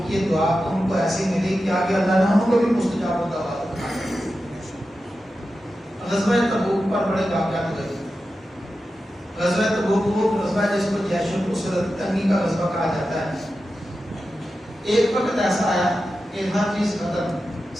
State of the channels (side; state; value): both; normal; correlation 0.91